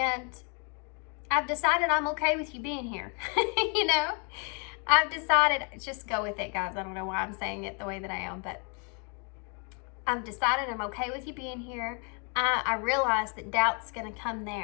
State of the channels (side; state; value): right; quieter; 37.1 dB